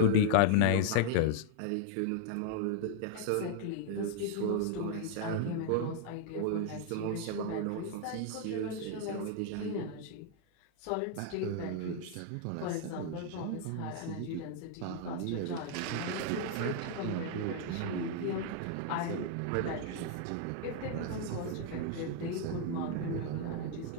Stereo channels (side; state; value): both; different; correlation 0.00